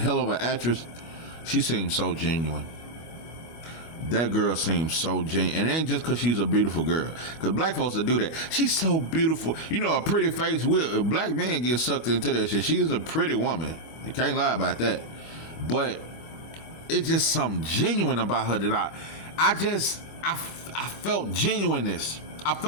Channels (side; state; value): right; late; 24 ms